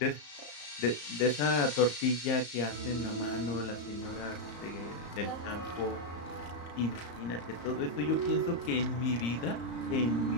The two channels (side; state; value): right; late; 34 ms